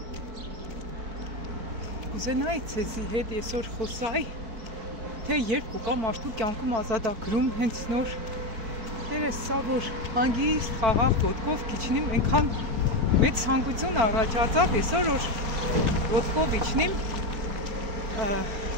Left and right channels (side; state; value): left; late; 4.5 ms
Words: կուզենայի ցեզի հետ այսօր խոսայի թե երբ կուկա մարդու կյանքում ազատագրում հենց նոր դերս սա որ հանգիստ խաղաղ ոտքով քիչնիմ այնքան մեծ ցանկություն առաջացավ այսօր որ ոտքով իջնիմ